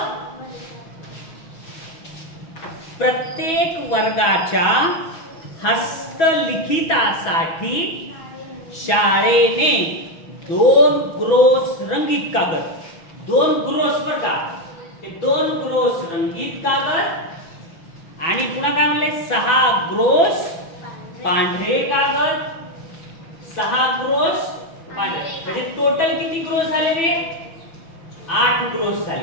प्रत्येक वर्गाच्या हस्तलिखितासाठी शाळेने 2 ग्रोस रंगीत कागद, 2 ग्रोस बर का, ते 2 ग्रोस रंगीत कागद आणि पुन्हा काय म्हणले? 6 ग्रोस पांढरे कागद, 6 ग्रोस पांढरे. म्हणजे टोटल किती ग्रोस झाले रे? 8 ग्रोस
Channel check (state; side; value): late; right; 6.1 ms